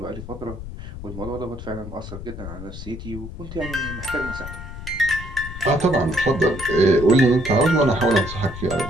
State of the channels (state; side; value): noise; left; rumble, 10 dB below the sound